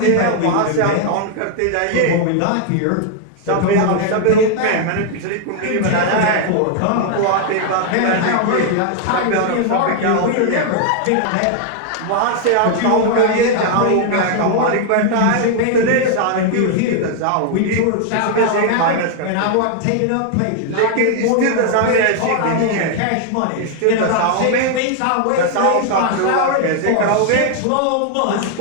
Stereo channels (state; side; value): different; both; correlation 0.00